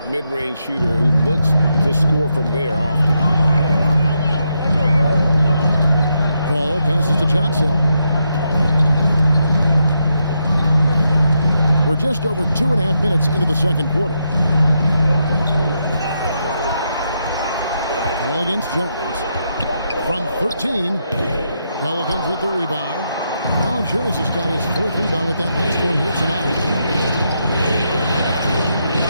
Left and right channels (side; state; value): both; inverted; correlation -0.82